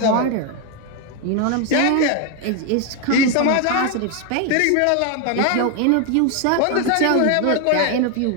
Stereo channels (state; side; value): different; both; correlation 0.01